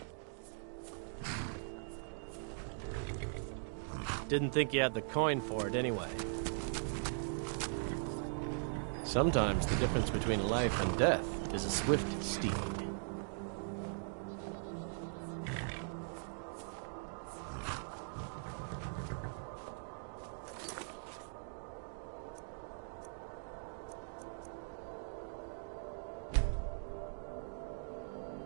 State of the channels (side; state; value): left; silent; digital silence